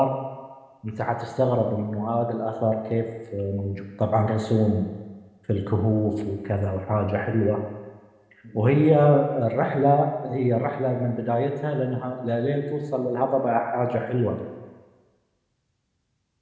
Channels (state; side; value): identical; both; correlation 1.00